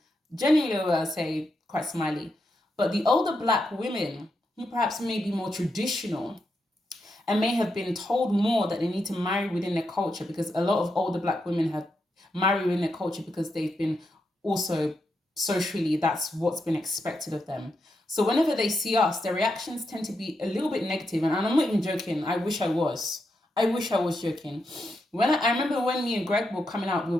generally, I'll say, quite smiley. But the older Black women, who perhaps may be more traditional and may have been told more that they need to marry within their culture, because a lot of older Black women have married within their culture because they've been also socially, that's what's been expected of them. So whenever they see us, their reactions tend to be a little bit negative. And I'm not even joking. I wish I was joking. I remember when me and Greg were coming out, we were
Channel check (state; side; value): normal; both; correlation 0.84